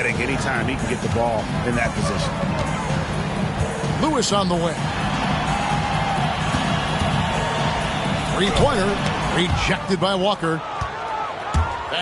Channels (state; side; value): identical; both; correlation 1.00